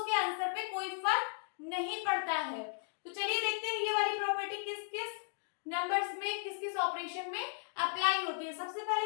आंसर पे कोई फर्क नहीं पड़ता है। तो चलिए देखते हैं ये वाली प्रॉपर्टी किस किस नंबर्स में किस किस ऑपरेशन में अप्लाई होती है। सबसे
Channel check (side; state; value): right; silent; 54 dB below the other